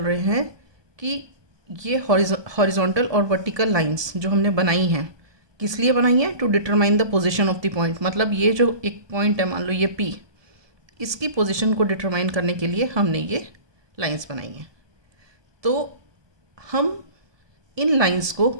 रहे हैं कि ये हॉरिजॉन्टल और वर्टिकल लाइंस जो हमने बनाई हैं किस लिए बनाई हैं, to determine the position of the point. मतलब ये जो एक पॉइंट है, मान लो ये पी, इसकी पोजीशन को डिटरमाइन करने के लिए हमने ये लाइंस बनाई हैं. तो हम इन लाइंस को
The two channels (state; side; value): late; left; 1.2 ms